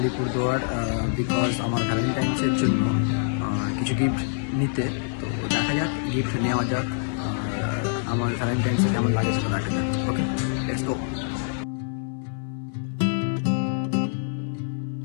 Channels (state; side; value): silent; right; 61 dB below the other